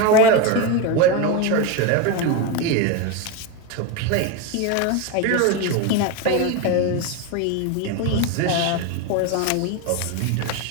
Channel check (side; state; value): both; different; correlation 0.04